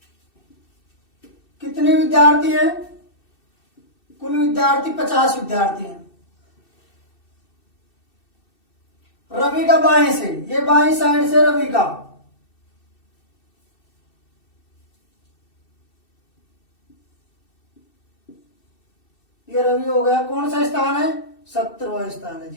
कितने विद्यार्थी हैं? कुल विद्यार्थी 50 विद्यार्थी हैं। रवि का बाएं से, ये बाएं साइड से रवि का, ये रवि हो गया। कौन सा स्थान है? 17वां स्थान है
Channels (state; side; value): late; right; 2.6 ms